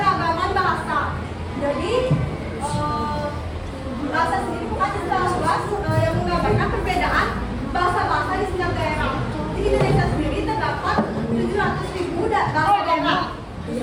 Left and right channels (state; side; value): identical; both; correlation 1.00